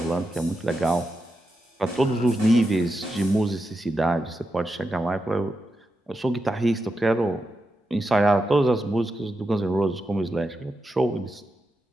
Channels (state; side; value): normal; both; correlation 0.87